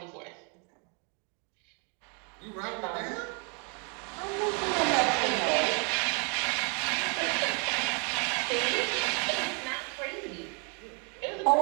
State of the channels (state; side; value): quieter; left; 36.4 dB